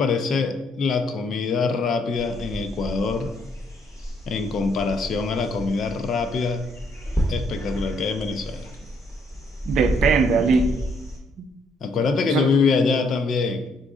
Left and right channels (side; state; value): both; normal; correlation 0.70